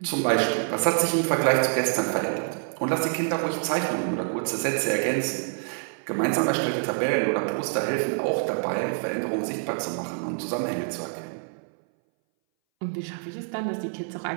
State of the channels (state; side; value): silent; left; 60 dB below the other